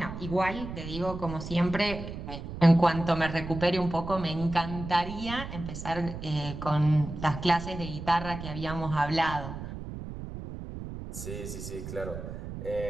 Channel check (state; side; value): noise; right; rumble, 9 dB below the sound